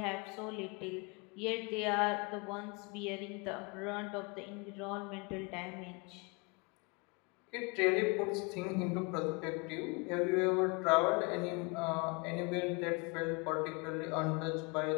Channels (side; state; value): right; quieter; 30.0 dB